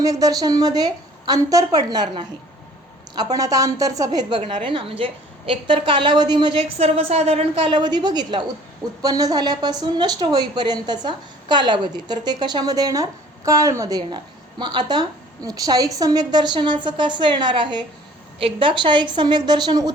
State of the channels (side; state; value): both; normal; correlation 0.52